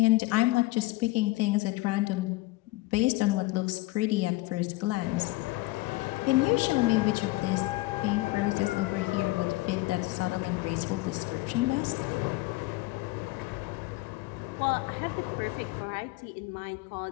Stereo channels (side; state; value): right; quieter; 20.5 dB